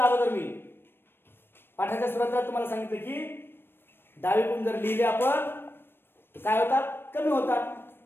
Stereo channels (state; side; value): late; right; 0.10 ms